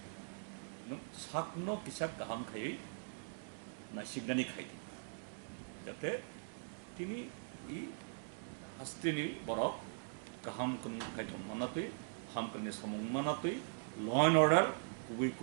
নং সাকনো কিসাক গাহাম খাই না সিগনানি খাই যাতে তিনি ই হাস্তিনি বরক গাহাম কোন খাইতন মানাতই হামকনি সমং মানাতই ল এন্ড অর্ডার কুবি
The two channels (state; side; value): silent; left; digital silence